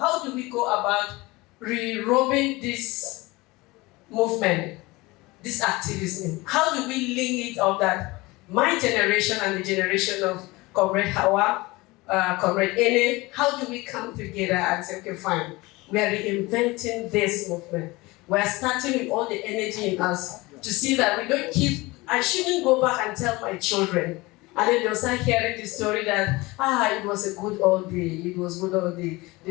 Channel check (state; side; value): quieter; right; 22.1 dB